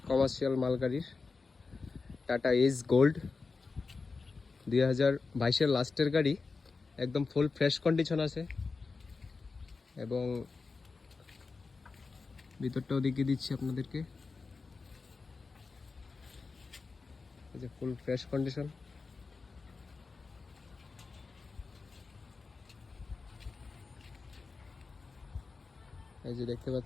কমার্শিয়াল মালগাড়ির টাটা এস গোল্ড 2022-এর লাস্টের গাড়ি, একদম ফুল ফ্রেশ কন্ডিশন আছে এবং ভিতরটাও দেখিয়ে দিচ্ছি আপনাদেরকে। এই যে ফুল ফ্রেশ কন্ডিশন। এই যে দেখতে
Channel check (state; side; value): quieter; right; 4.3 dB